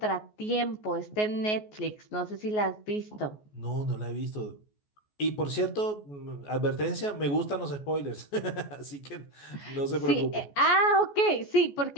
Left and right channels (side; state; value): right; late; 14 ms